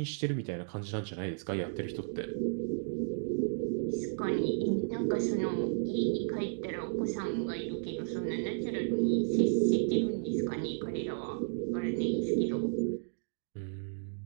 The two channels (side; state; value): left; silent; digital silence